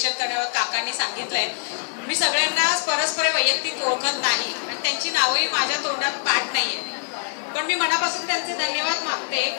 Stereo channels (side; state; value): right; silent; 56 dB below the other